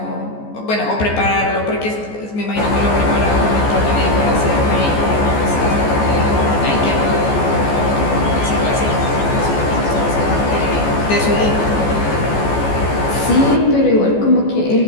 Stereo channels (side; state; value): right; late; 14 ms